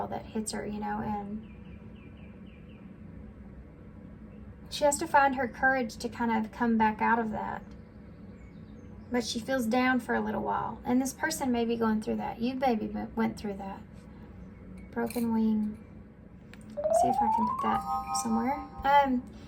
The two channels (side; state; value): both; identical; correlation 1.00